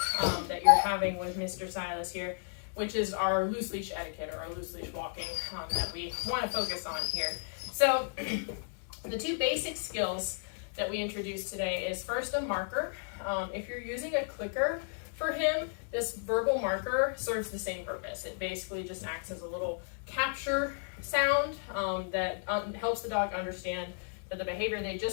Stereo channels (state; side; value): silent; right; digital silence